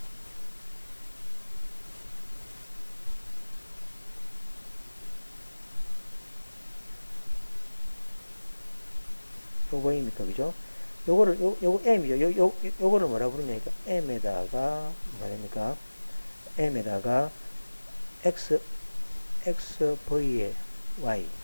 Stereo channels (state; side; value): inverted; both; correlation -1.00